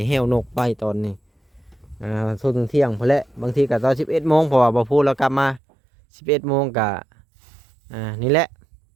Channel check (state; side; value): drops out; left; at 5.6 s